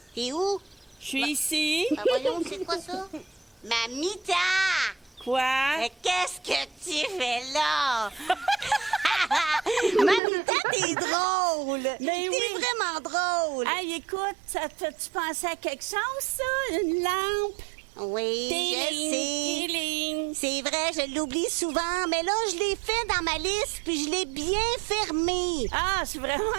T'es où? Je suis ici. Ben voyons, c'est quoi ça? Mamita! Quoi? Mais qu'est-ce que tu fais là? Mamita, t'es drôle! Mais t'es oui. vraiment drôle! Hey, écoute, ça te fait-tu penser à quelque chose, ça? Une lampe? Oui, je sais. Téling. C'est vrai, je l'oublie souvent, mais là, je l'ai fait dans ma liste, puis je l'ai bien fermé. Ah, je suis vraiment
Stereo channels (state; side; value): drops out; left; at 10.2 s